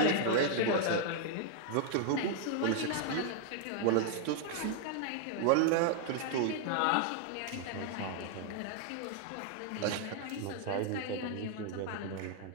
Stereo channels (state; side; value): different; both; correlation 0.00